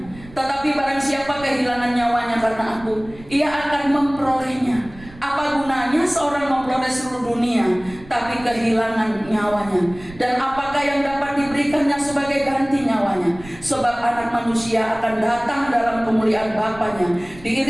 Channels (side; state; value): right; noise; rumble, 19 dB below the sound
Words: Tetapi barang siapa kehilangan nyawanya karena aku, ia akan memperolehnya. Apa gunanya seorang memperoleh seluruh dunia, tapi kehilangan nyawanya? Dan apakah yang dapat diberikannya sebagai ganti nyawanya? Sebab anak manusia akan datang dalam kemuliaan Bapanya,